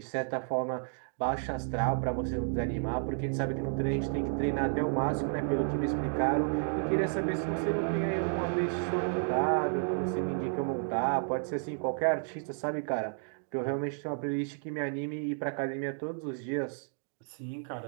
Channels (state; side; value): silent; left; 57 dB below the other